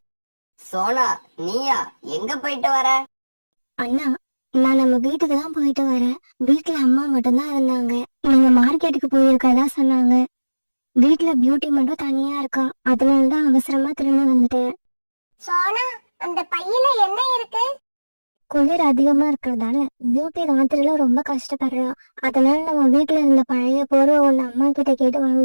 சோனா, நீயா? எங்க போயிட்டு வர? அண்ணா, நான் நம்ம வீட்டுக்கு தான் போயிட்டு வரேன். வீட்டுல அம்மா மட்டும்தான் இருந்தாங்க. நீங்க மார்க்கெட்டுக்கு போயிருக்கதா சொன்னாங்க. வீட்டுல பியூட்டி மட்டும் தனியா இருக்கா. அதனாலதான் அவசரமா திரும்பி வந்துட்டேன். சோனா, அந்த பையில என்ன இருக்கு? குளிர் அதிகமா இருக்கிறதால பியூட்டி ராத்திரில ரொம்ப கஷ்டப்படுறா. அதனால நம்ம வீட்டுல இருந்த பழைய போர்வை ஒண்ணு அம்மா கிட்ட கேட்டு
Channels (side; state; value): both; inverted; correlation -1.00